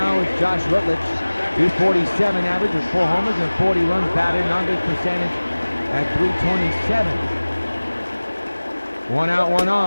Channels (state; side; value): inverted; both; correlation -1.00